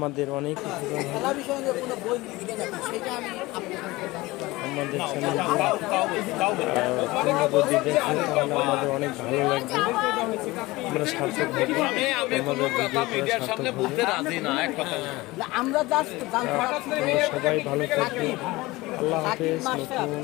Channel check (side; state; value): right; quieter; 20.6 dB